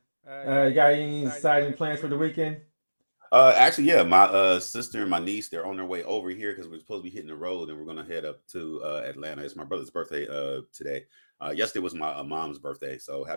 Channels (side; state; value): both; inverted; correlation -1.00